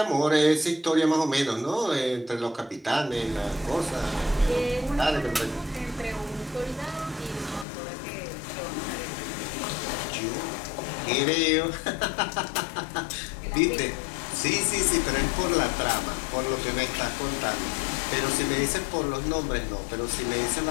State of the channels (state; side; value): drops out; right; at 7.7 s